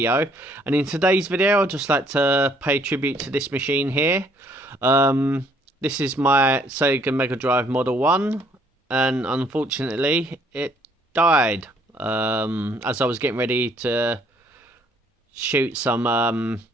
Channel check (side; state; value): both; normal; correlation 0.64